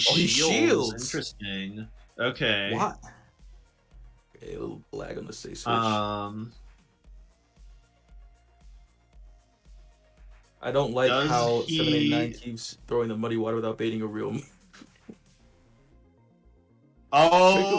Interesting. Okay. What? Okay, a little lag on the stay switch. I don't like how 789 keeps throwing the Muddy Water without baiting a real move.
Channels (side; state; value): both; identical; correlation 1.00